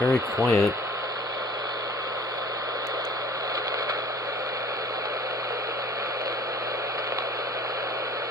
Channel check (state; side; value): normal; both; correlation 0.50